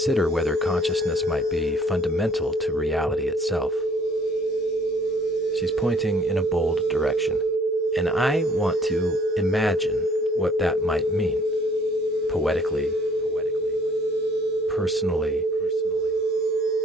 whether consciousness might be fundamental to reality itself. She's pointing in a bold direction, and I want to imagine what that might mean, poetically, personally,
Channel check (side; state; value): both; normal; correlation 0.57